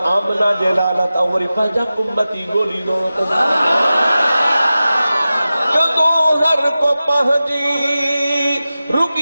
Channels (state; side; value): inverted; both; correlation -0.95